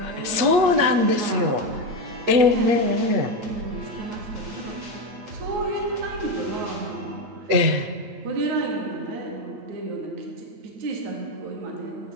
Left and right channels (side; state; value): left; late; 8.3 ms